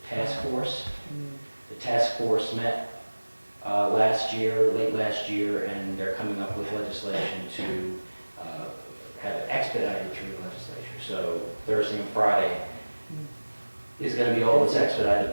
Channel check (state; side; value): inverted; both; correlation -1.00